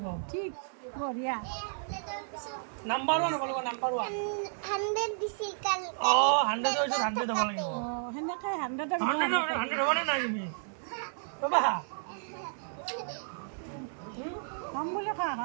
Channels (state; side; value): silent; left; digital silence